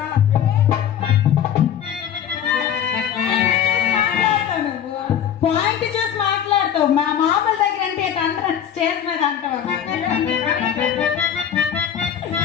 పాయింట్ చూసి మాట్లాడతావు. మా మామల దగ్గర అంటే అందరూ స్టేజ్ మీద అంటావు.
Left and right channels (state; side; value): quieter; right; 9.2 dB